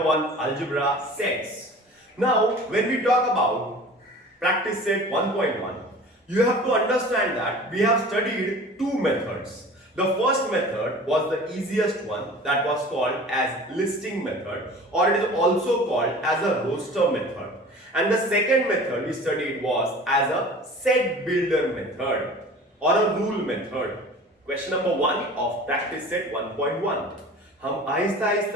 1 algebra sets. Now, when we talk about practice set 1.1, you have to understand that we have studied two methods. The first method was the easiest one, that was called as listing method, or it is also called as a roster method. And the second method we studied was as a set builder method or a rule method. Question number 1 of practice set 1.1 हम आहिस्ता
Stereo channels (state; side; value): normal; both; correlation 0.42